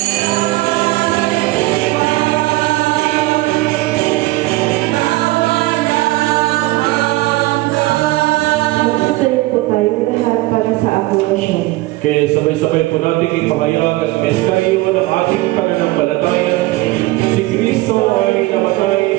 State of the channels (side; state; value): left; quieter; 19.8 dB